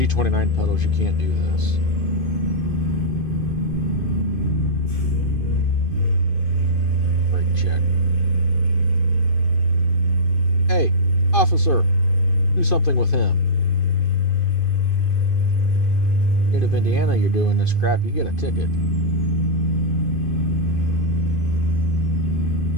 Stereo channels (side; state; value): right; late; 2.5 ms